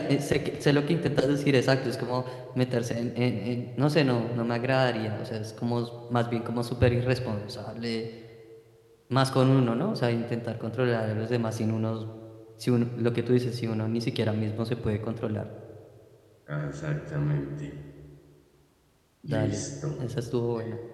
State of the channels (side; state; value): both; identical; correlation 1.00